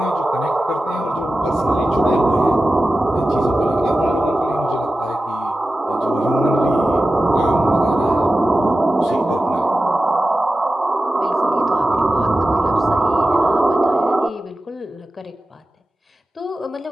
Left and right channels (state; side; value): normal; both; correlation 0.94